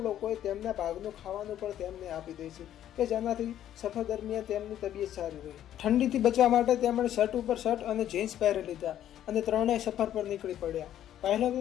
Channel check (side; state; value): right; quieter; 11.4 dB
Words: લોકોએ તેમના ભાગનું ખાવાનું પણ તેમને આપી દે છે કે જેનાથી સફર દરમિયાન તેમની તબિયત સારી રહે. ઠંડીથી બચવા માટે તેમણે શર્ટ ઉપર શર્ટ અને જીન્સ પહેરી લીધા અને ત્રણેય સફર પર નીકળી પડ્યા. પહેલાં